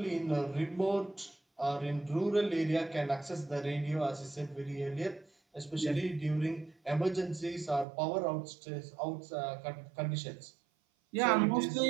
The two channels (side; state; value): left; drops out; at 7.9 s